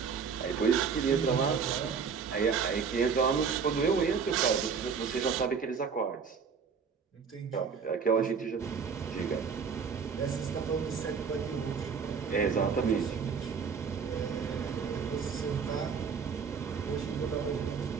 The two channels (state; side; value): quieter; left; 6.0 dB